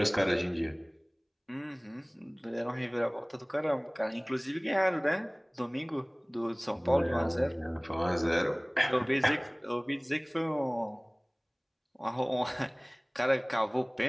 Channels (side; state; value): both; identical; correlation 1.00